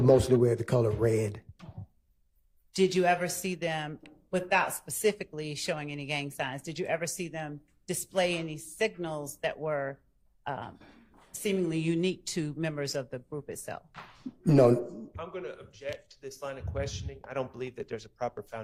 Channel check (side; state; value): both; identical; correlation 1.00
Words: wear the color red. Did you ever see them, without specifically showing any gang signs, did you ever see them display any signals that were seemingly unique to members of the group itself? No. I'm going to object to this line of questioning. I don't believe that there's a proper